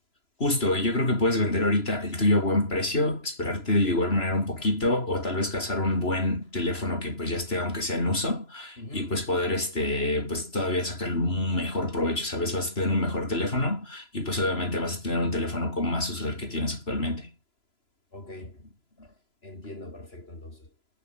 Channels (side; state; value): right; late; 3.0 ms